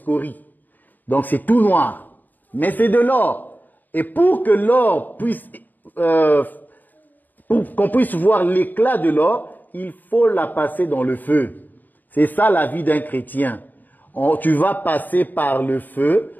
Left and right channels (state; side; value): late; right; 0.086 ms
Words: Donc c'est tout noir. Mais c'est de l'or. Et pour que l'or puisse, pour qu'on puisse voir l'éclat de l'or, il faut la passer dans le feu. C'est ça la vie d'un chrétien. Tu vas passer par le feu.